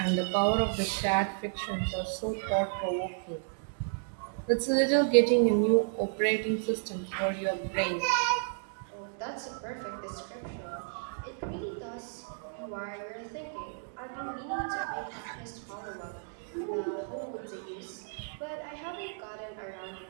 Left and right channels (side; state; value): left; silent; digital silence